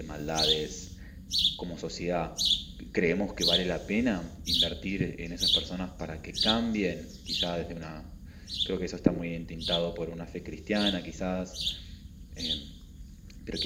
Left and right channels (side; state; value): both; identical; correlation 1.00